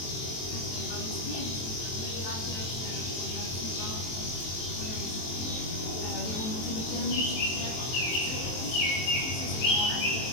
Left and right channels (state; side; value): late; right; 23 ms